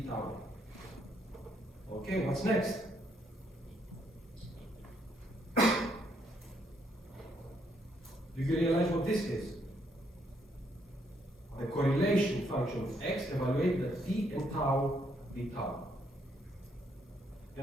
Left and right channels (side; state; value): both; normal; correlation 0.72